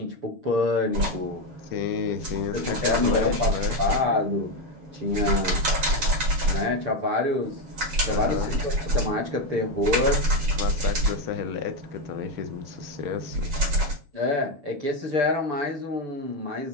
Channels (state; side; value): late; left; 7.3 ms